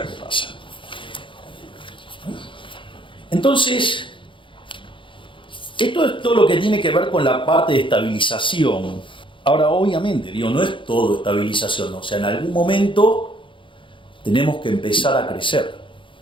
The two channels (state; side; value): late; right; 0.24 ms